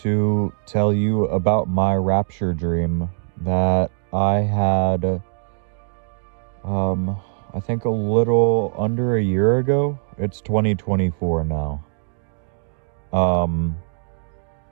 tell you about my rapture dream that I had, I think a little under a year ago. It's 2024 now.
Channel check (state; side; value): silent; left; digital silence